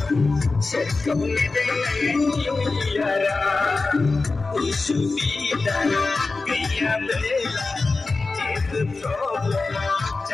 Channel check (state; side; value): quieter; right; 3.7 dB